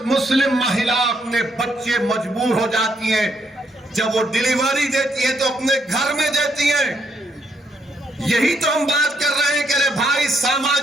मुस्लिम महिला अपने बच्चे मजबूर हो जाती हैं, जब वो डिलीवरी देती है तो अपने घर में देती हैं। यही तो हम बात कर रहे हैं कि अरे भाई,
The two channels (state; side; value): normal; both; correlation 0.74